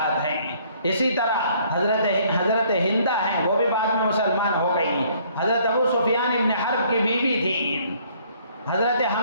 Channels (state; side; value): inverted; both; correlation -0.61